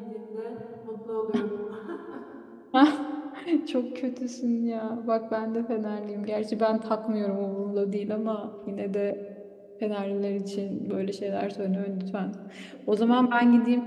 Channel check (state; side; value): identical; both; correlation 1.00